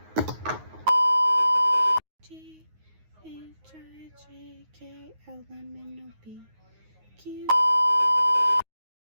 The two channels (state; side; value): late; left; 9.5 ms